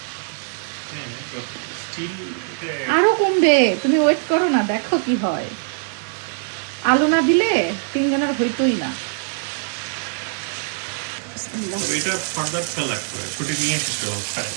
আরো কমবে, তুমি ওয়েট করো না, দেখো কি হয়। আলু না দিলে তিনজনের হইতোই না।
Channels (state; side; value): silent; left; digital silence